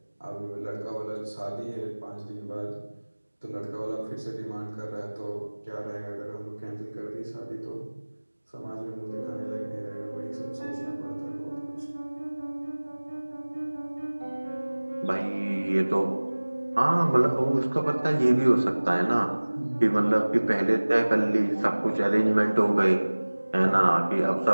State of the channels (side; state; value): both; inverted; correlation -1.00